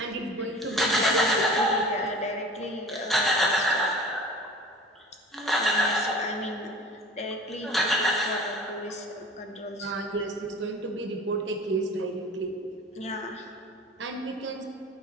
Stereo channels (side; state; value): both; normal; correlation 0.41